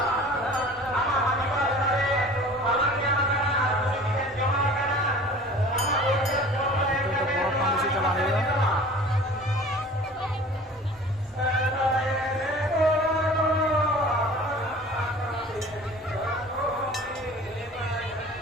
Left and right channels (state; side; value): normal; both; correlation 0.44